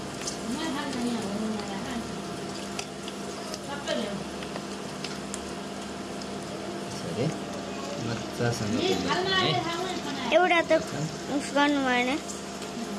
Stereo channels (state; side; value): identical; both; correlation 1.00